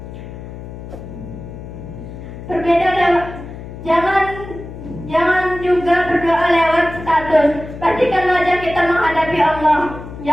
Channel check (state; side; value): noise; left; hum, 12 dB below the sound